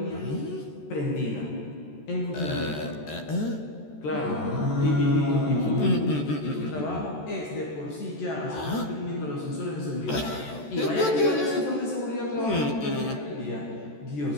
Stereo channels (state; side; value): late; right; 14 ms